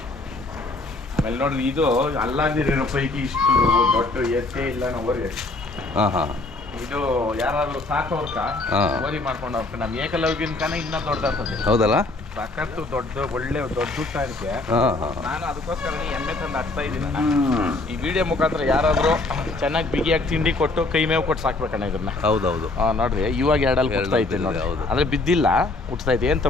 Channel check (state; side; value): quieter; right; 3.1 dB